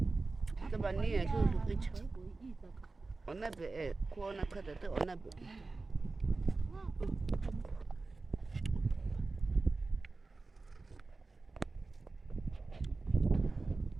Tabani tu kicha. Onabe kuona kata te onabe.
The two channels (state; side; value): quieter; left; 3.7 dB